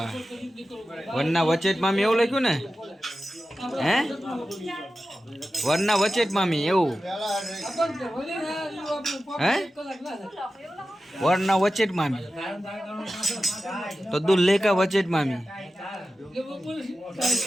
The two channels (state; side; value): normal; both; correlation 0.93